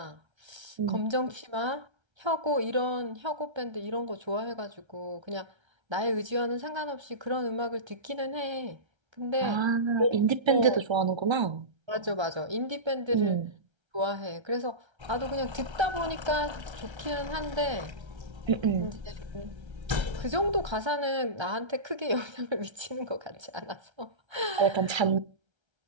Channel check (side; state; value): left; late; 1.3 ms